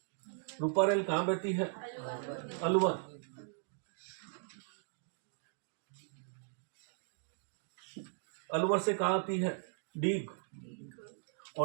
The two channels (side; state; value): left; silent; digital silence